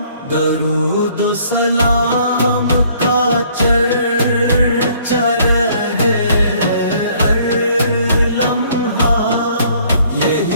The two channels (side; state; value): both; inverted; correlation -0.61